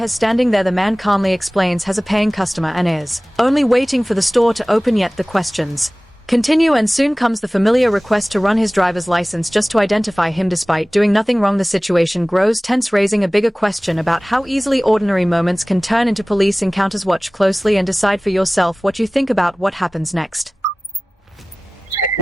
standing there. The man calmly explains has a paying customer and is only waiting for the store to open, yet the questions continue, and soon comes the familiar request to run his driver's license just to identify him despite doing nothing wrong. The situation grows tense, raising a bigger question about how easily ordinary moments can turn into police encounters. Watch closely and decide for yourself what you think about what happens next.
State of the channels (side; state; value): both; normal; correlation 0.98